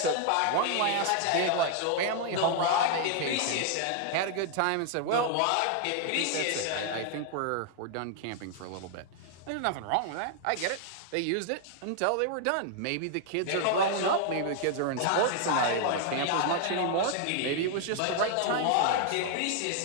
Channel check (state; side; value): different; both; correlation 0.00